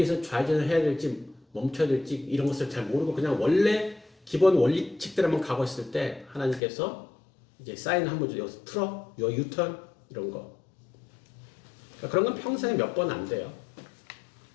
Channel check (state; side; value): drops out; right; at 6.6 s